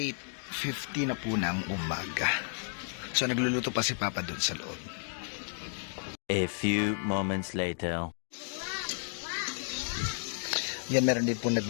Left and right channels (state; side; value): silent; right; digital silence